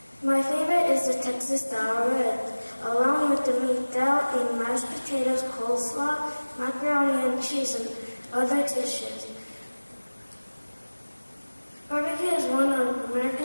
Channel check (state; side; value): inverted; both; correlation -1.00